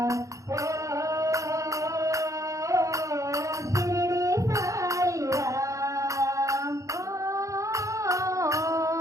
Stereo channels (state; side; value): late; left; 0.15 ms